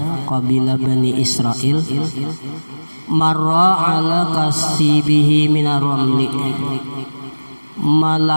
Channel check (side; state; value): both; inverted; correlation -1.00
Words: kabilah Bani Israel, marra ala kasibihi minar ramli,